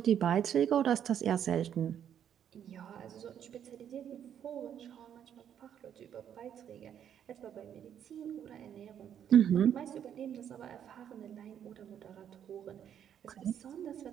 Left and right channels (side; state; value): left; quieter; 9.3 dB